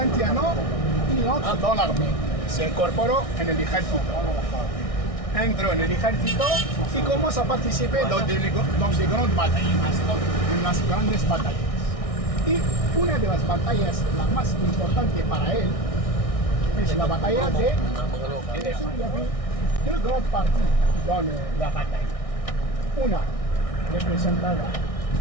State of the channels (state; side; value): late; right; 1.6 ms